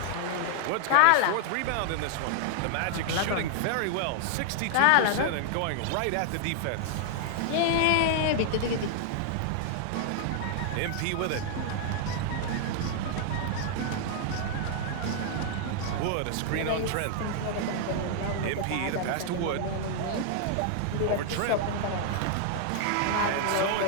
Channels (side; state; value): both; different; correlation 0.00